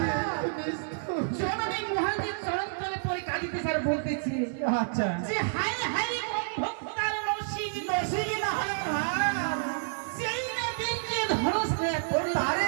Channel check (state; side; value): silent; left; digital silence